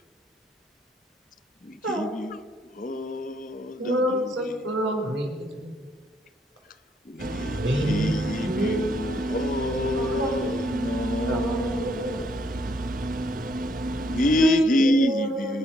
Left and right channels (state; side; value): normal; both; correlation 0.70